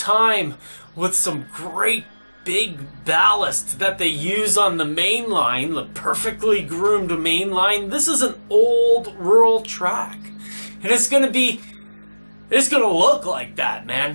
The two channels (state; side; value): inverted; both; correlation -1.00